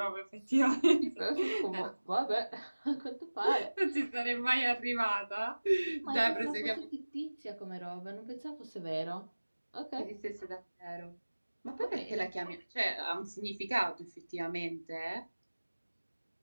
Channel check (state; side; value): inverted; both; correlation -1.00